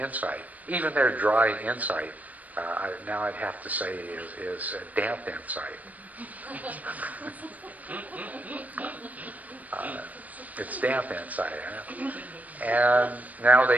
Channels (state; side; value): late; left; 0.075 ms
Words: Even their dry insight, now I'd have to say, is a damp insight. It's damp insight. And now